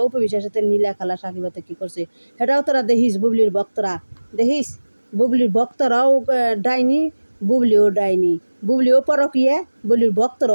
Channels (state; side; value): inverted; both; correlation -1.00